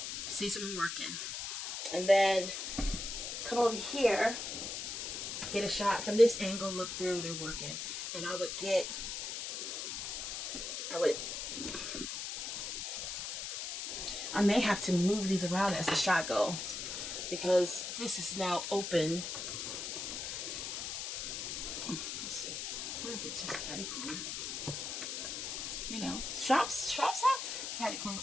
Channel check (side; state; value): left; noise; hiss, 4 dB below the sound